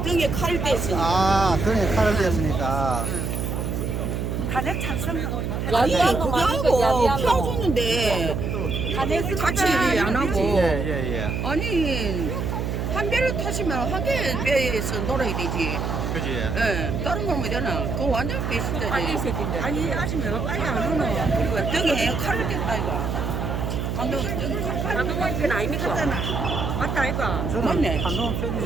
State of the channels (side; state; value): right; noise; hum, 2 dB below the sound